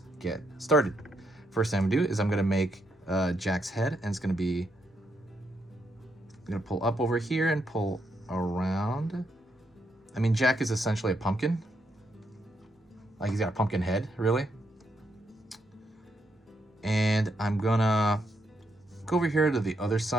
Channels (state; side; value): normal; both; correlation 0.78